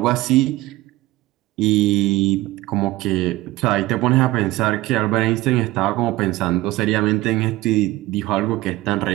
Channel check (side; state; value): left; quieter; 18.2 dB